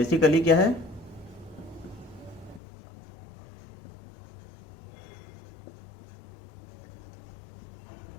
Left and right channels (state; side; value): drops out; right; at 2.6 s